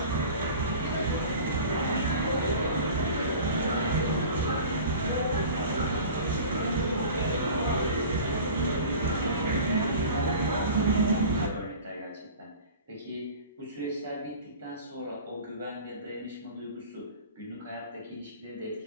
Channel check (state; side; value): inverted; both; correlation -0.40